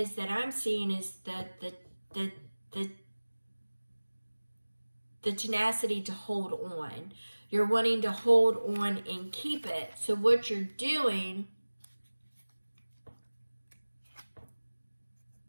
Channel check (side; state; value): both; inverted; correlation -1.00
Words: that I'm seeing is that the tenacity to hold on. You're wanting to hold on and keep it. So what you're doing,